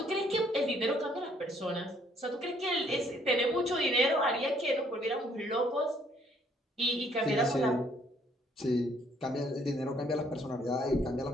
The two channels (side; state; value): both; normal; correlation 0.65